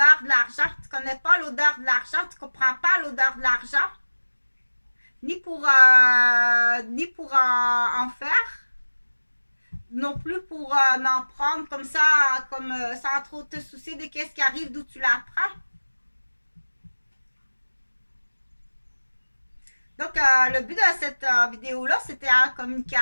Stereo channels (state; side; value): inverted; both; correlation -1.00